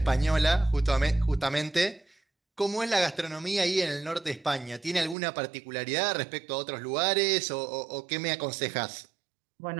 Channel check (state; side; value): drops out; left; at 5.2 s